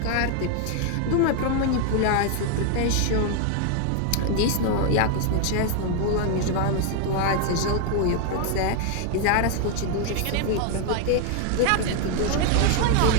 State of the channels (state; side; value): different; both; correlation 0.00